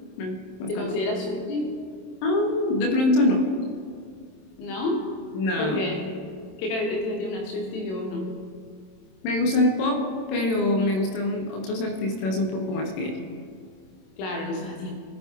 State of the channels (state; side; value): late; right; 27 ms